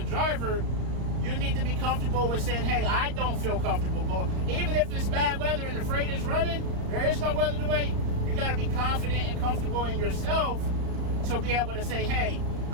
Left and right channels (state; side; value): late; left; 35 ms